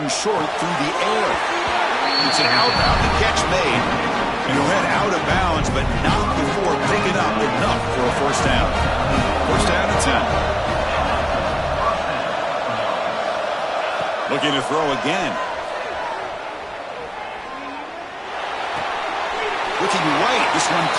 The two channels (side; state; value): both; identical; correlation 1.00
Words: and short through the air. It's an outbound. The catch made. And he'll head out of bounds, but not before picking up enough for a first down. First down and 10. Looking to throw again. Looking right. This one